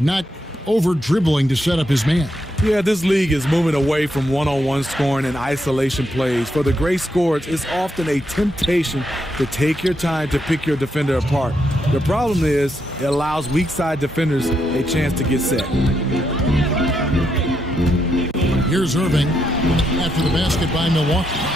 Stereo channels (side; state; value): both; normal; correlation 0.80